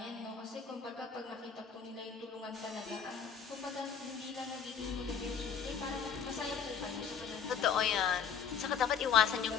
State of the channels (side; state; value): right; quieter; 7.0 dB